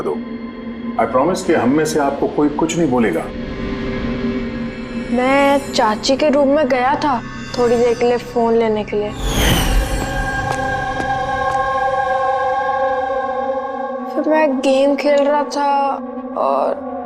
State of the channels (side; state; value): both; identical; correlation 1.00